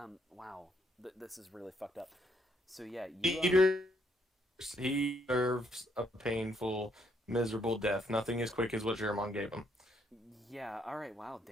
Wow. This is really fucked up. So yeah, He deserves a painful, miserable death. Nothing as quick as what Jermon gave him. Yeah. All right. Wow.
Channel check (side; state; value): both; normal; correlation 0.72